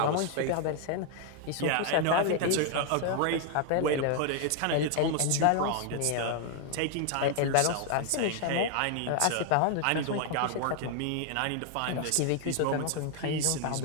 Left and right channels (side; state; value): both; different; correlation 0.00